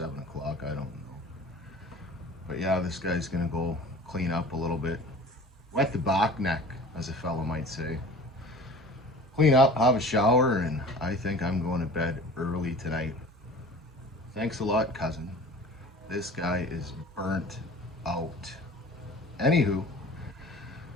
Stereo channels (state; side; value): normal; both; correlation 0.42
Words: o'clock, I don't know. But yeah, this guy's going to go clean up a little bit. Wet the back neck, as a fellow might say. Clean up, have a shower, and I think I'm going to bed early tonight. Thanks a lot, cousin. This guy is burnt out. Anywho,